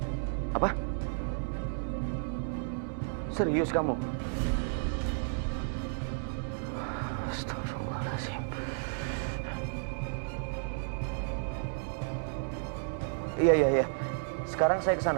Apa? Serius kamu? Astagfirullahaladzim. Iya. Sekarang saya ke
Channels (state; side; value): silent; left; digital silence